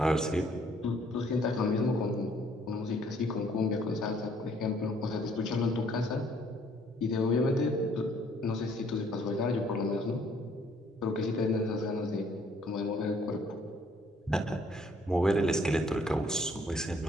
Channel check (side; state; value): both; normal; correlation 0.63